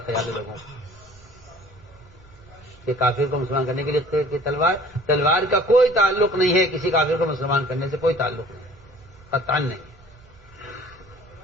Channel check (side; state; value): right; noise; hum, 26 dB below the sound